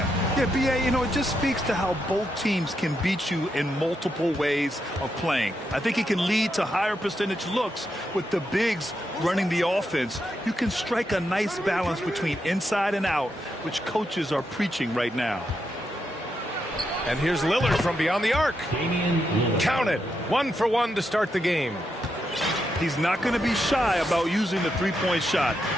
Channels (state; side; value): normal; both; correlation 0.83